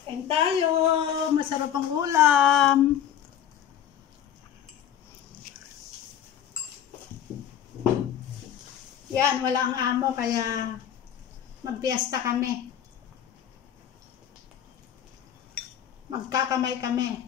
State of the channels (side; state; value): right; quieter; 9.8 dB